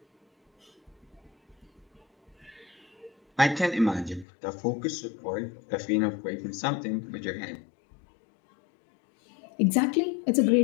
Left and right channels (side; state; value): right; drops out; at 4.2 s